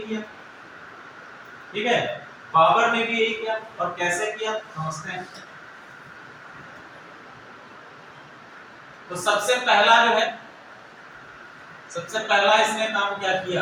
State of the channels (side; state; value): both; identical; correlation 1.00